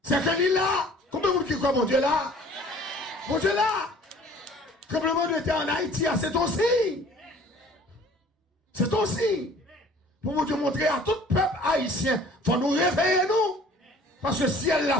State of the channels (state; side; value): normal; both; correlation 0.51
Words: c'est que l'île là, combien de monde qui croit mon Dieu là? Mon Dieu là! Tremblement de terre en Haïti, c'est ton signe. C'est ton signe. Pour vous montrer à tout peuple haïtien, il faut nous réveiller nous. Parce que si elle l'a